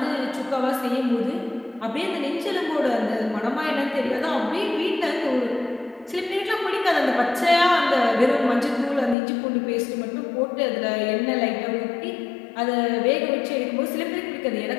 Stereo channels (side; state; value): right; drops out; at 9.2 s